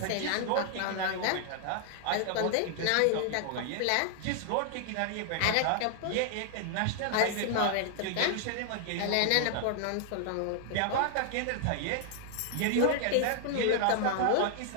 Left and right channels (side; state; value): both; different; correlation -0.01